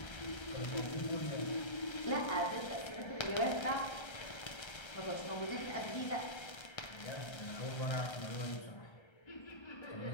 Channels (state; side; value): late; right; 1.3 ms